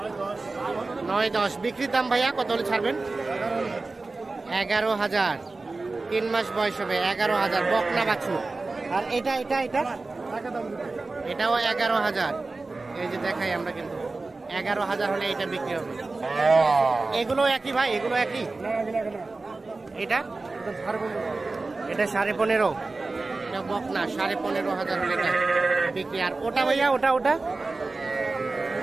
9-10। বিক্রির দাম ভাইয়া কত হলে ছাড়বেন? 11,000। 3 মাস বয়স হবে। 11,000 বকনা বাছুর। আর এটা এটাও 11,000। এই যে দেখাই আমরা, কিন্তু 11,000 হলে এটা বিক্রি হবে। এগুলো একই ভাই? এগুলো একই? এটা 15.5। এটা বকনা। 15,500 হলে এটা বিক্রি। আর ওটা ভাইয়া, ওটা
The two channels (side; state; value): left; quieter; 3.5 dB